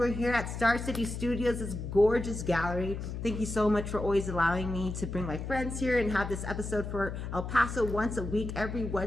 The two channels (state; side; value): noise; left; hum, 6 dB below the sound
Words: here at Star City Studios, this gorgeous gallery. Thank you so much for always allowing me to bring my friends here and have this episode for El Paso once a week, every